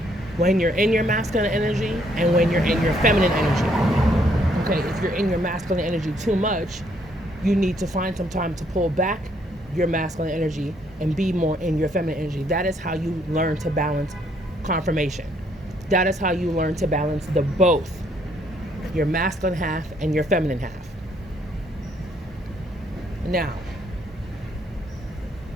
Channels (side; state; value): both; normal; correlation 0.69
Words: when you're in your masculine energy and when you're in your feminine energy. Okay, if you're in your masculine energy too much, you need to find some time to pull back your masculine energy and be more in your feminine energy. That is how you learn to balance confirmation. That is how you learn to balance the both, your masculine half and your feminine half. Now,